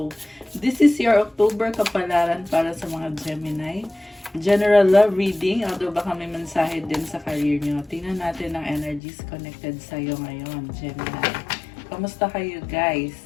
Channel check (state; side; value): drops out; right; at 9.0 s